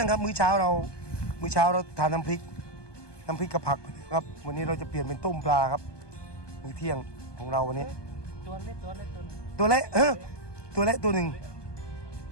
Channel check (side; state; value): right; late; 1.2 ms